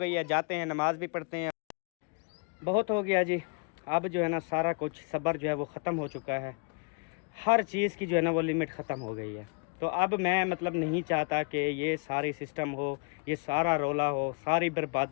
है, जाते हैं, नमाज भी पढ़ते हैं। बहुत हो गया जी। अब जो है ना सारा कुछ सब्र जो है वो ख़त्म हो चुका है। हर चीज़ की जो है ना वो लिमिट ख़त्म हो गई है। तो अब मैं मतलब नहीं चाहता कि ये सारी सिस्टम हो, ये सारा रोला हो, सारी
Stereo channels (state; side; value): quieter; right; 35.0 dB